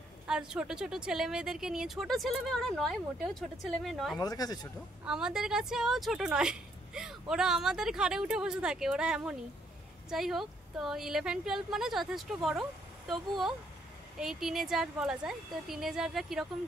আর ছোট ছোট ছেলে মেয়েদেরকে নিয়ে, ছোট ছেলে মেয়ে ওরা নয়, মোটেও ছোট ছেলে মেয়ে নয়, আমাদের কাছে ছোট, আমাদের কাছেও ছোট নয়। ওরা আমাদের ঘাড়ে উঠে বসে থাকে, ওরা এমনই। যাই হোক, তো 11-12 মানে যথেষ্ট বড়, তবুও এই টিনেজার বলা যায়। তো টিনেজাররা কীরকম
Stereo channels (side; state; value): both; normal; correlation 0.70